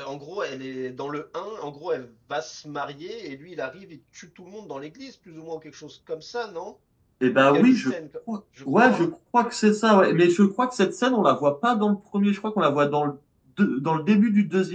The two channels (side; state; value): both; identical; correlation 1.00